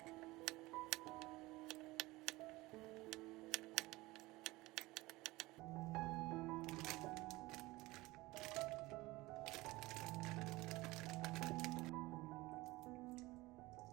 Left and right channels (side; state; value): left; quieter; 20.3 dB